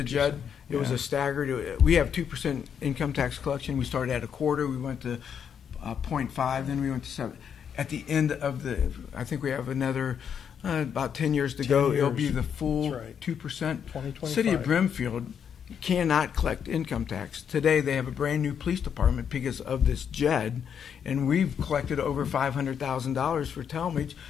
JED, it was Yeah. a staggered. We have 2% income tax collection. We started at a quarter. We went to 0.5. Then we went to 7. At the end of I think we have another about 10 years to 10 go. It'll years. be the full That's right. 2%. 2025. City of Brimfield cannot collect income tax. Today they have a brand new police department because of this JED, and we've collected over $500,000 for Talmadge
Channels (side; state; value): right; quieter; 7.8 dB